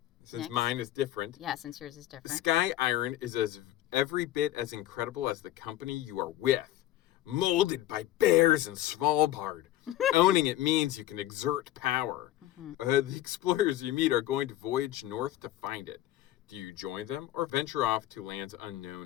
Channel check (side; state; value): right; quieter; 14.3 dB